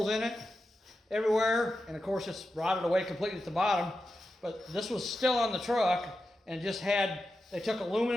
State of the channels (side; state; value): both; normal; correlation 0.90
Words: in it, everywhere. And of course, it's rotted away completely at the bottom. But this was still on the truck and just had, they took